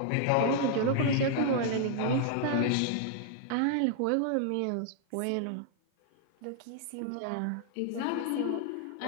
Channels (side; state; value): both; different; correlation 0.00